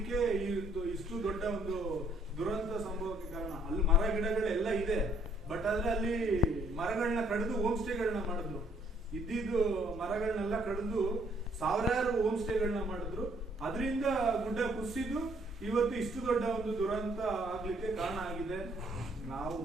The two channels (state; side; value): normal; both; correlation 0.66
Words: ಇಷ್ಟು ದೊಡ್ಡ ಒಂದು ದುರಂತ ಸಂಭವಕ್ಕೆ ಕಾರಣ. ಅಲ್ಲಿ ಮರ ಗಿಡಗಳೆಲ್ಲ ಇದೆ, ಬಟ್ ಆದ್ರೆ ಅಲ್ಲಿ ಮರಗಳನ್ನ ಕಡಿದು ಹೋಮ್ ಸ್ಟೇಗಳನ್ನ ಮಾಡಿದ್ರು. ಇದ್ದಿದ್ದು ಮರಗಳನ್ನೆಲ್ಲ ಕಡಿದು ಸಾವಿರಾರು ಹೋಮ್ ಸ್ಟೇಗಳನ್ನ ಮಾಡಿದ್ರು. ಅದರಿಂದ ಗುಡ್ಡ ಕುಸಿದು ಇವತ್ತು ಇಷ್ಟು ದೊಡ್ಡ ಒಂದು ದುರಂತ ಆಗ್ಲಿಕ್ಕೆ ಕಾರಣ ಆಗಿದೆ. ನಾವು